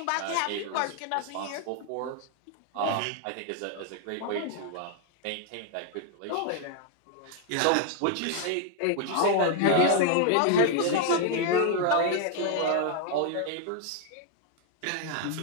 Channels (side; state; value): both; different; correlation 0.00